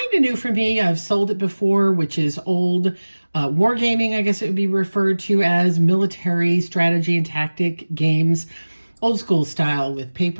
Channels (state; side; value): inverted; both; correlation -1.00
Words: of new for me. I've sold it before, which is old wargaming, I guess it would be referred to as military strategy and tactic games, old school style with